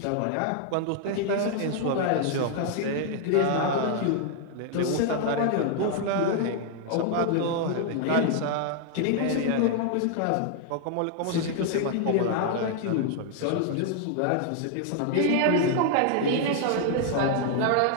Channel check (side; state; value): both; different; correlation 0.00